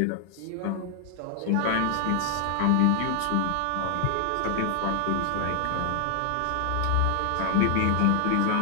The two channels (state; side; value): different; both; correlation 0.00